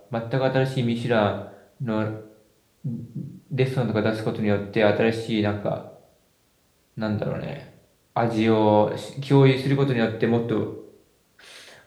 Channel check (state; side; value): identical; both; correlation 1.00